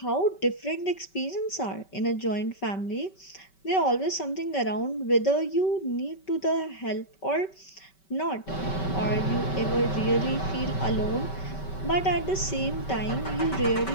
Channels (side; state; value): right; late; 5.2 ms